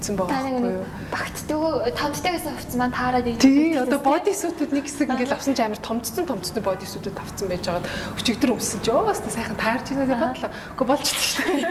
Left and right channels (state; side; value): identical; both; correlation 1.00